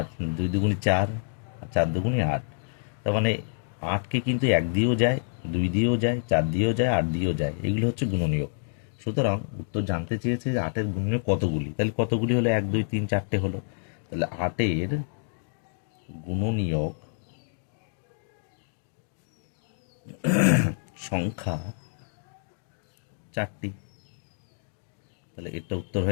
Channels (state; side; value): silent; right; digital silence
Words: 2 দুগুণি 4, আর 4 দুগুণি 8। তার মানে 8কে কিন্তু 1 দিয়েও যায়, 2 দিয়েও যায়, 4 দিয়েও যায়, 8 দিয়েও যায়। এগুলো হচ্ছে গুণনীয়ক। সুতরাং উত্তর জানতে চেয়েছে যে 8-এর গুণনীয়ক কতগুলি। তাহলে কতগুলি হলো? 1 2 3 4টে হলো। তাহলে 8-এর গুণনীয়ক সংখ্যা 4টি। তাহলে এটা উত্তর